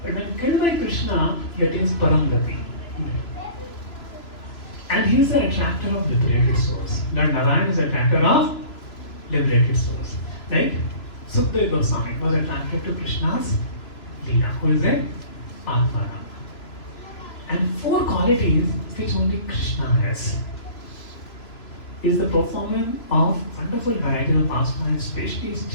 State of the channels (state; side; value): late; right; 3.0 ms